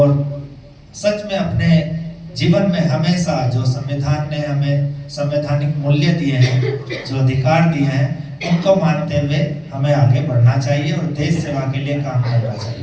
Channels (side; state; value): both; identical; correlation 1.00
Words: सच में अपने जीवन में हमेशा जो संविधान ने हमें संवैधानिक मूल्य दिए हैं, जो अधिकार दिए हैं, उनको मानते हुए हमें आगे बढ़ना चाहिए और देश सेवा के लिए काम करना